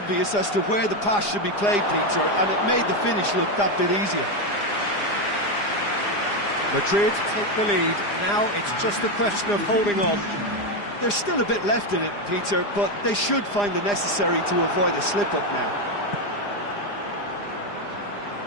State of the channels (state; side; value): late; right; 4.9 ms